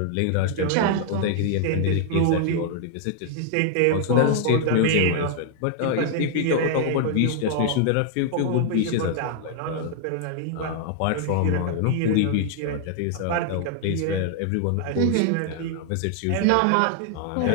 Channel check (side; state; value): both; different; correlation 0.00